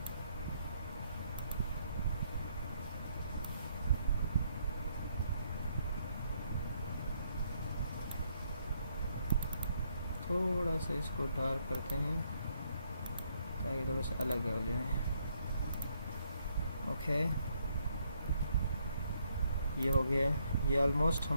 थोड़ा सा इसको डार्क करते हैं ताकि थोड़ा सा अलग हो जाए, ओके। ये हो गया, ये ऑलमोस्ट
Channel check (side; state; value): both; inverted; correlation -0.72